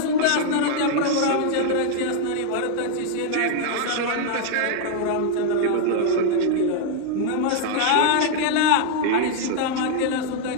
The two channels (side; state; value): both; different; correlation 0.00